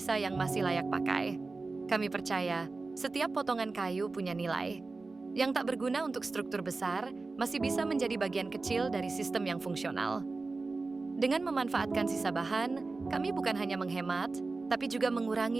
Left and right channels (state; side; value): quieter; left; 3.7 dB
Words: yang masih layak pakai. Kami percaya, setiap potongan kayu punya nilai. Yang tak berguna untuk struktur besar, masih bisa menjadi bagian kecil dari sistem yang fungsional. Dengan memanfaatkan sisa bahan, kami bukan hanya menghemat, tapi juga